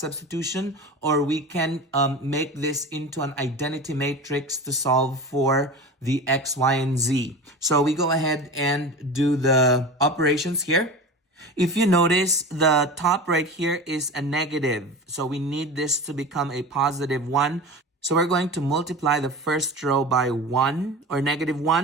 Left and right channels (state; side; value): normal; both; correlation 0.31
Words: Or we can make this into an identity matrix to solve for the x, y, and z. So we go ahead and do the operations here. If you notice, the top right here is a negative. So we need this to become a positive 1. So we're going to multiply the first row by 1 or negative